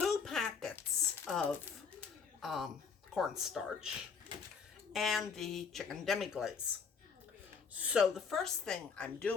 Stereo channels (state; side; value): quieter; right; 5.9 dB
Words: packets of cornstarch, and the chicken demi-glaze. So the first thing I'm